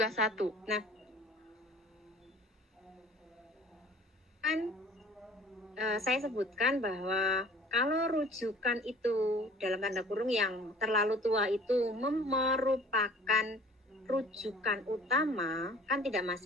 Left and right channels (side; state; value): both; normal; correlation 0.49